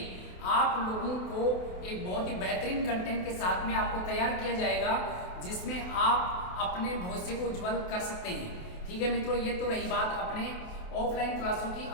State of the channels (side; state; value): right; late; 28 ms